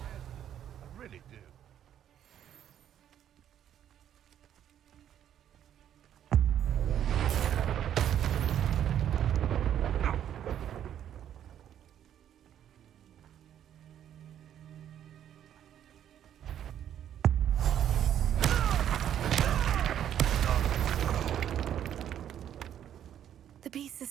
head. I really do. The beasts are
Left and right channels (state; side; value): quieter; left; 10.2 dB